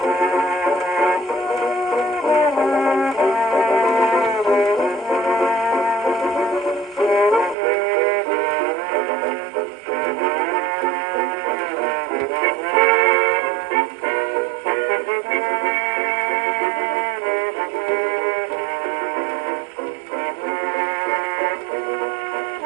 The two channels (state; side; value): drops out; left; at 7.6 s